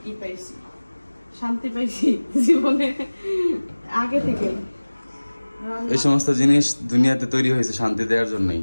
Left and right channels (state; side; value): inverted; both; correlation -1.00